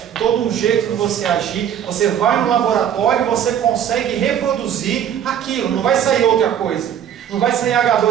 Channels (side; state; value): left; quieter; 9.4 dB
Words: todo um jeito de você agir, você vai no laboratório e você consegue reproduzir aquilo, não vai sair outra coisa. Não vai sair